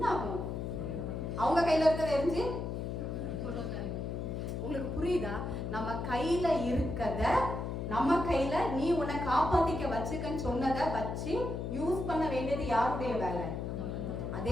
ஆகும்? அவங்க கையில இருக்கிறத எரிஞ்சு, உங்களுக்கு புரியுதா? நம்ம கையில இருக்கத, நம்ம கையில நீ உன்னை காப்பாத்திக்க வச்சுக்கன்னு சொன்னதை வச்சு யூஸ் பண்ண வேண்டியது யாருடைய வேலை?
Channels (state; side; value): noise; left; hum, 4 dB below the sound